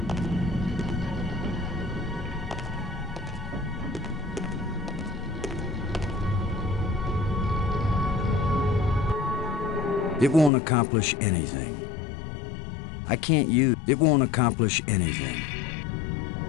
It won't accomplish anything. I can't use... It won't accomplish anything.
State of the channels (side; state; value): right; drops out; at 10.5 s